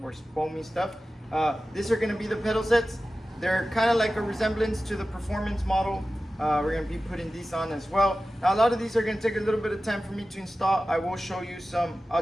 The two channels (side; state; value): both; normal; correlation 0.95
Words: or foamy stuff. These are going to be the pedal sets. They're kind of like a resemblance to the performance model. We're going to be putting these on as well. Now, a lot of these are going to take a little bit of time for me to install. I will show you some.